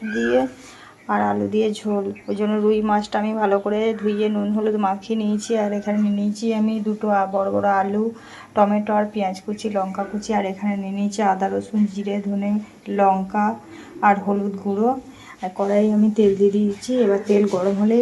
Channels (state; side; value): identical; both; correlation 1.00